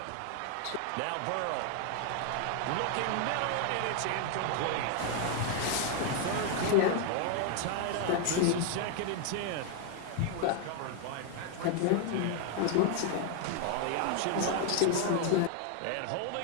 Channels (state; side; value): different; both; correlation 0.00